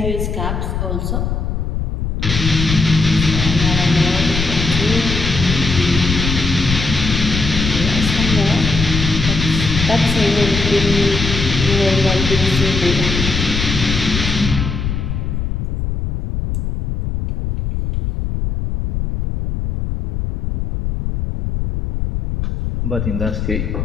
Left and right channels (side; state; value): left; noise; rumble, 2 dB below the sound